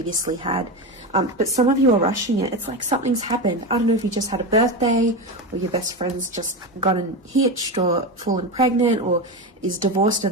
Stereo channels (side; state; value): both; normal; correlation 0.18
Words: had. But some of you are rushing it. It's like something's happened. I don't know if you just had a birthday, or your best friend's just gotten hitched or fallen pregnant, or is divorced